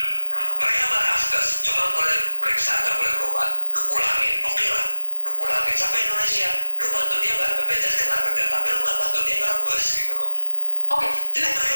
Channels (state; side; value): inverted; both; correlation -1.00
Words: Mereka marah asgas, cuma boleh periksa, nggak boleh berobat. Lu pulangin, oke lah, lu pulangin sampai Indonesia, lu bantu dia bayar BPJS Ketenagakerjaan, tapi lu nggak bantu dia ngerembes gitu loh. Oke. Jadi mereka